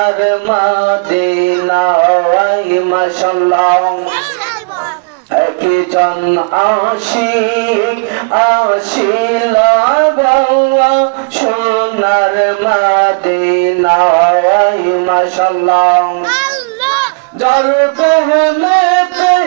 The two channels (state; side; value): quieter; left; 34.1 dB